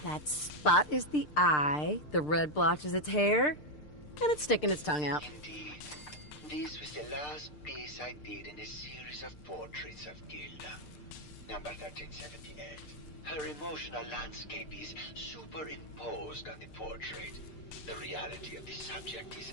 That spot is the eye, the red blotch is its hair, and it's sticking its tongue out. Indeed. This was the last piece I did in a series of portraits of Gilda. Number 1378. Her emotional landscape is superimposed on the portrait. The reality of the subject is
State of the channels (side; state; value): right; late; 6.7 ms